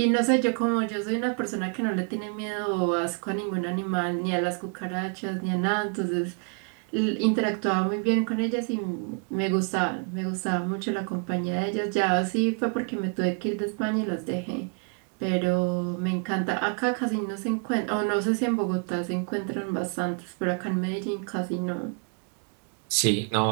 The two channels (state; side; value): quieter; left; 38.6 dB